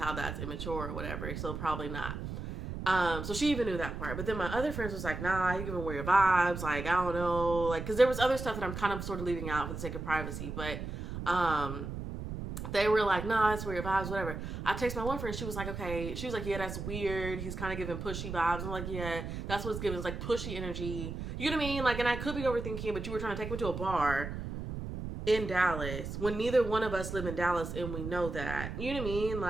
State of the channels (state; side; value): noise; right; rumble, 6 dB below the sound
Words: that's immature or whatever. So probably not. So she even knew that part. But then my other friends was like, nah, you giving weird vibes. Like, I don't know. Like, because there was other stuff that I'm kind of sort of leaving out for the sake of privacy. But they were like, nah, that's weird vibes, whatever. I text my one friend. She was like, okay. She was like, yeah, that's weird. He's kind of giving pushy vibes. I'm like, yeah, that's what's giving. It's like pushy energy. You know what I mean? Like, and I could be overthinking, but you were trying to take me to a bar in Dallas when neither one of us live in Dallas, and we know that. You know what I mean?